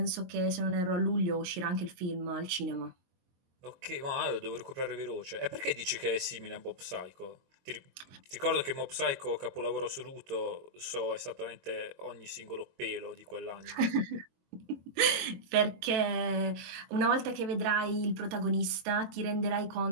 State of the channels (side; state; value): left; late; 22 ms